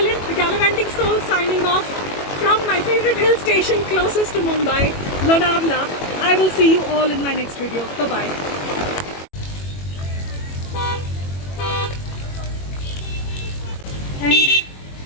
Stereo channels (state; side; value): late; right; 21 ms